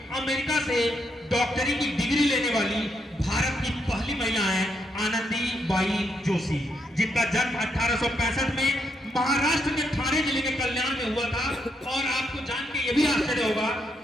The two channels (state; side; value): normal; both; correlation 0.78